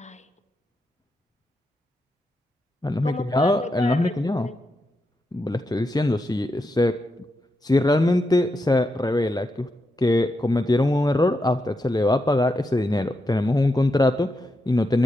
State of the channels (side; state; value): both; normal; correlation 0.85